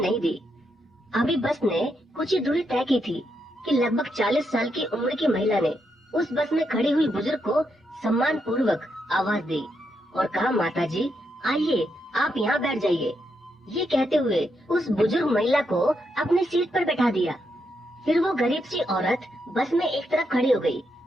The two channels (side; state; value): both; normal; correlation 0.81